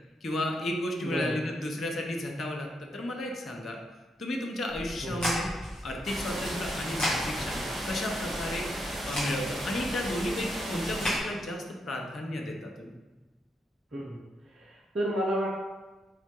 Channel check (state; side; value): normal; both; correlation 0.80